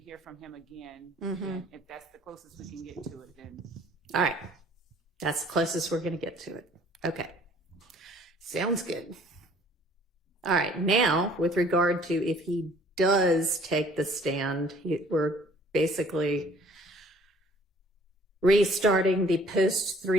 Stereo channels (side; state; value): both; normal; correlation 0.55